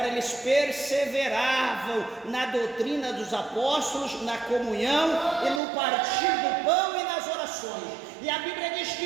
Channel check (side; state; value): left; drops out; at 5.6 s